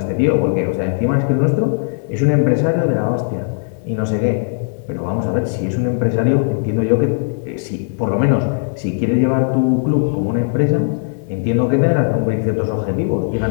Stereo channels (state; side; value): silent; right; digital silence